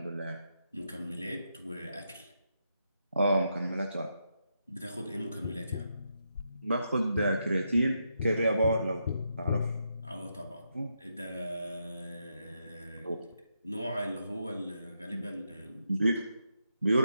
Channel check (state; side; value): inverted; both; correlation -0.83